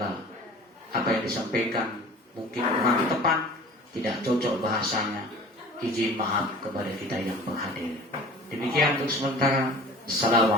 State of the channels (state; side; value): normal; both; correlation 0.43